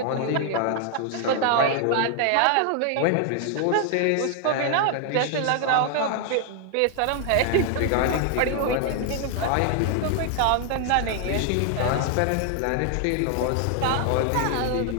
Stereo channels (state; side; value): different; both; correlation 0.00